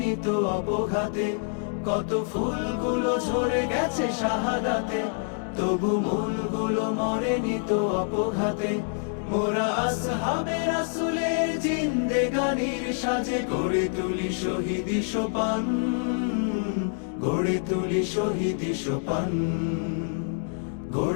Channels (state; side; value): silent; right; 60 dB below the other